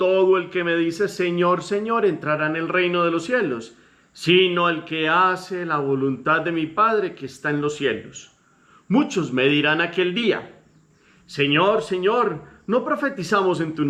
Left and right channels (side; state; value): both; identical; correlation 1.00